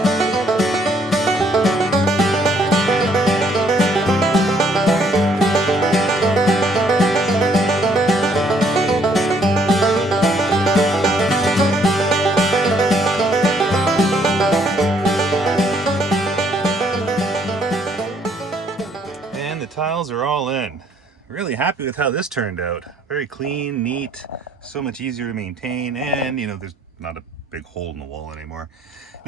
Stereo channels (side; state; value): both; normal; correlation 0.66